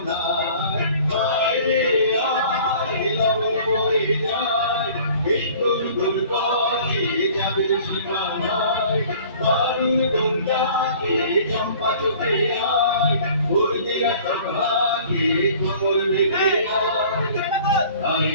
আয় রে আয় লগন বয়ে যায়, এই গুল গুল করে যাবে সীমানায়, বালুর বন্যাকে চম্পা চোখে আয়, বলবিনা সভাকে কোমর বেঁধে আয়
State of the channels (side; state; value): both; inverted; correlation -0.49